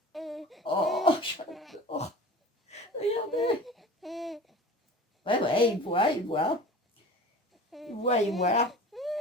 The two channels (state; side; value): normal; both; correlation 0.38